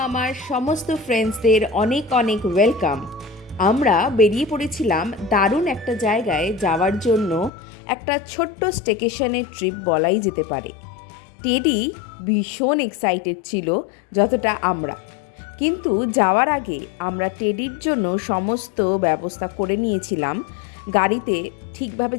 সমস্ত ফ্রেন্ডসদের অনেক অনেক ওয়েলকাম। আমরা বেরিয়ে পড়েছিলাম দারুণ একটা জায়গায় যাওয়ার জন্য, একটা ছোট্ট স্টেকেশনের ট্রিপ বলাই যেতে পারে। টেডি ভীষণ এক্সাইটেড ছিল যতটা আমরা, কিন্তু যাওয়ার আগে আমরা টেডির জন্য সমস্ত ব্যবস্থা করে নিয়েছিলাম গাড়িতে ঠিকভাবে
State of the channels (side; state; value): right; drops out; at 7.5 s